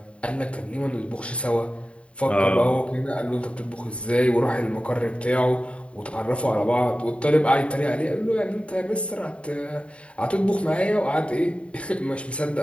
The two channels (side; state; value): right; late; 0.062 ms